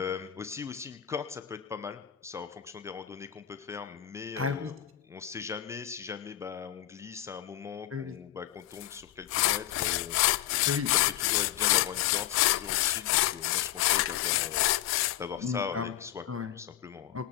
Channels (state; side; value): quieter; right; 12.5 dB